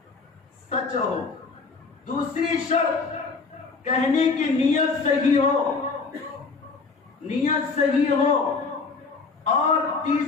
سچ ہو. دوسری شرط کہنے کی نیت صحیح ہو، نیت صحیح ہو. اور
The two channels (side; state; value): right; quieter; 4.4 dB